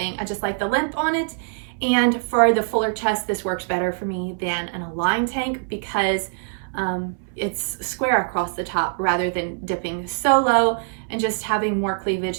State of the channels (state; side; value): silent; left; 63 dB below the other